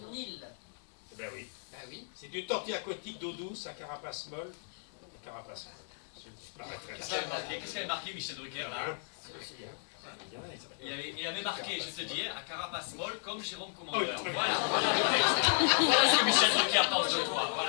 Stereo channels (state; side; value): silent; right; digital silence